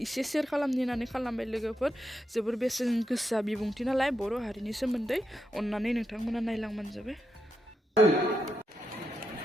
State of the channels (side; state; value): both; normal; correlation 0.84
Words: एसे शेयार खालामनो होननानै खालामबाय लोगोफोर। जोबोर बेसेन गोसा बिबुंथि नालाय बर' हारिनि सोमोन्दै, अन्नानै नोंथांमोना नायलांबानो जाबाय।